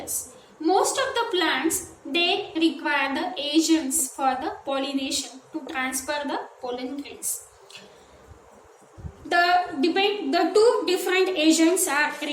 Most of the plants they require the agents for the pollination to transfer the pollen grains. The two different agents are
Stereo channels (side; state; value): both; identical; correlation 1.00